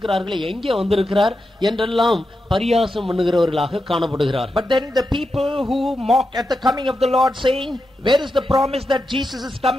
எங்கே வந்திருக்கிறார் என்றெல்லாம் பரியாசம் பண்ணுகிறவர்களாக காணப்படுகிறார். But then the people who mock at the coming of the Lord, saying, where is the promise that Jesus is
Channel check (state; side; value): normal; both; correlation 0.88